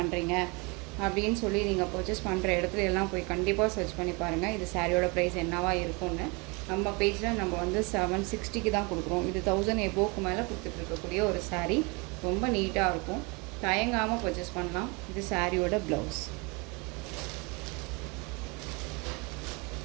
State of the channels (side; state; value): left; quieter; 29.0 dB